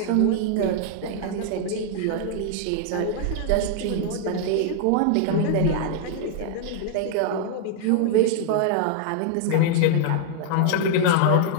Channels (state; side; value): different; both; correlation -0.01